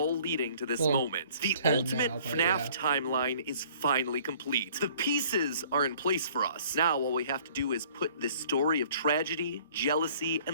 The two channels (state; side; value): inverted; both; correlation -0.55